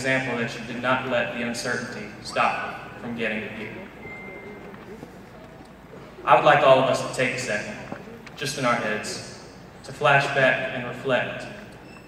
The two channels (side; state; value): both; identical; correlation 1.00